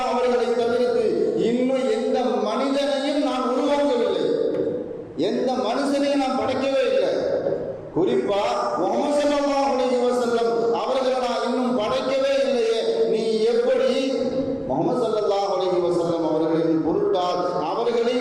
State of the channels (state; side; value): identical; both; correlation 1.00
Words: அவர்களை தவிர்த்து இன்னும் எந்த மனிதனையும் நான் உருவாக்கவில்லை, எந்த மனுஷனையும் நான் படைக்கவே இல்லை. குறிப்பா முஹம்மது ஸல்லல்லாஹு அலைஹி வஸல்லம் அவர்களை நான் இன்னும் படைக்கவே இல்லையே, நீ எப்படி முஹம்மது ஸல்லல்லாஹு அலைஹி வஸல்லம் அவர்களின் பொருட்டால் அவர்களை